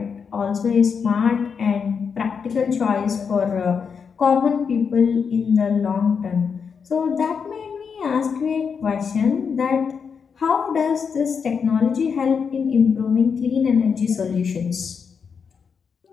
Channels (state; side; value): quieter; right; 6.2 dB